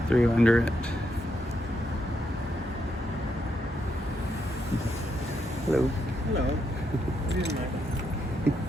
through under it. Hello. Hello.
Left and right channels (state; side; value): normal; both; correlation 0.79